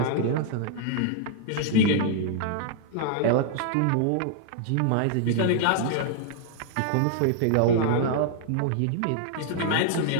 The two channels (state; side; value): different; both; correlation -0.01